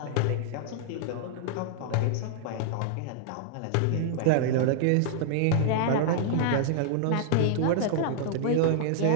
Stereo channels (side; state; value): both; different; correlation -0.01